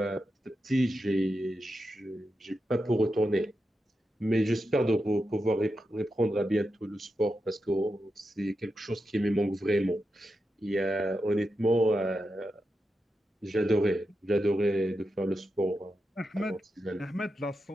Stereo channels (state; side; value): normal; both; correlation 0.88